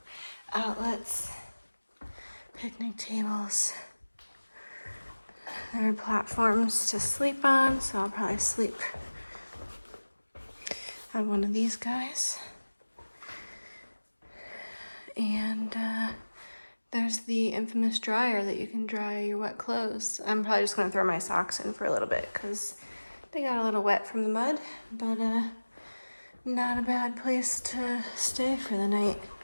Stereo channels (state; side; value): inverted; both; correlation -1.00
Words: outlets, picnic tables. There are platforms to sleep on, so I'll probably sleep on one of these guys. And there's the infamous dryer that you can dry your wet clothes. I'm probably just gonna throw my socks in for a little bit because they got a little wet from the mud, but not a bad place to stay for the night.